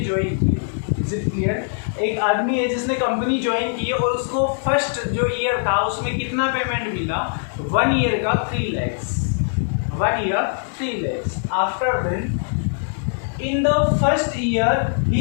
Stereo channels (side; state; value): right; silent; digital silence